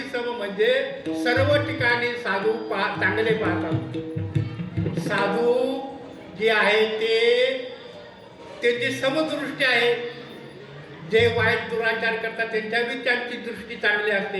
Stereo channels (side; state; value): both; identical; correlation 1.00